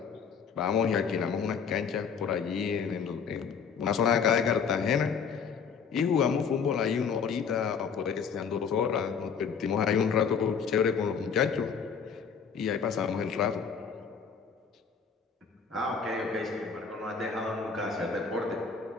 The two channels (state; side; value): quieter; right; 6.3 dB